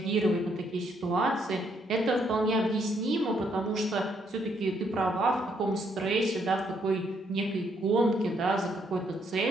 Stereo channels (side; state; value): both; normal; correlation 0.72